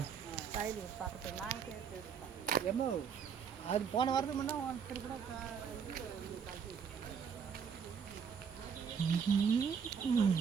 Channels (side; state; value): left; quieter; 6.8 dB